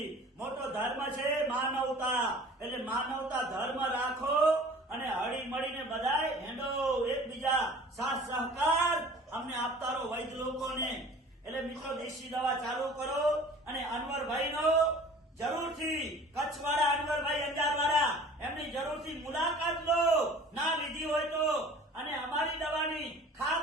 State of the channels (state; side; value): normal; both; correlation 0.46